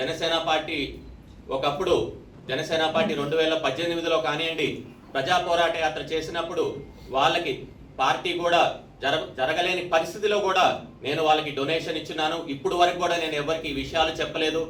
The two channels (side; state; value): both; identical; correlation 1.00